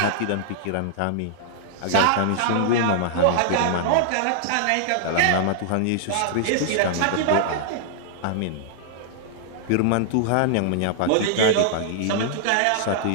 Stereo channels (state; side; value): different; both; correlation -0.01